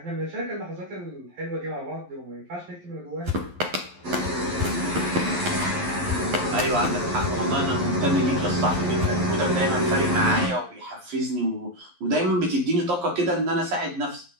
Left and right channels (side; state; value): left; late; 11 ms